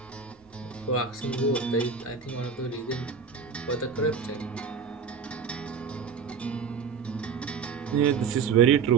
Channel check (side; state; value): left; quieter; 5.8 dB